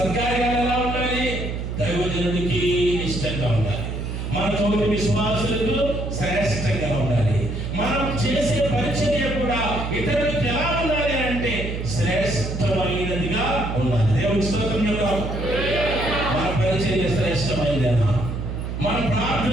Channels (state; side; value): noise; right; hum, 4 dB below the sound